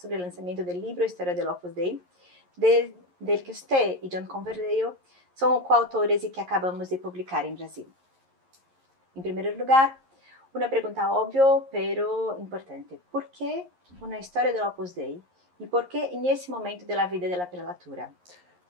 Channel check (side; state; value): left; late; 11 ms